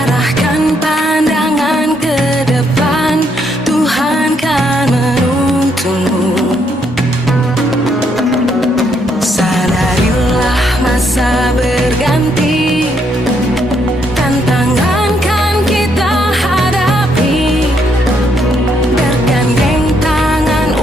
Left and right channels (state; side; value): normal; both; correlation 0.74